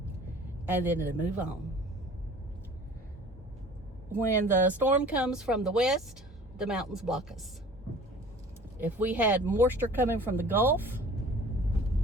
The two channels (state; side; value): normal; both; correlation 0.46